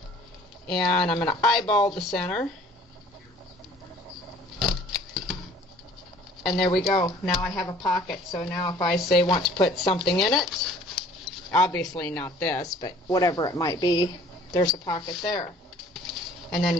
and I'm going to eyeball the center. And there we go. Now I have a pocket. So now if I say want to put something in it, obviously not this, but whatever it might be, there's a pocket there. And then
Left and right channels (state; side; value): normal; both; correlation 0.52